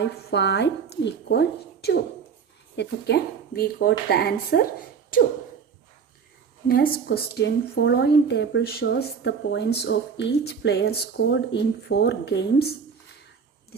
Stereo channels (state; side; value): quieter; left; 6.4 dB